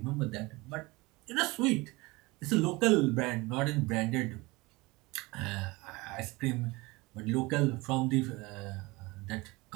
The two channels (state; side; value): quieter; left; 23.1 dB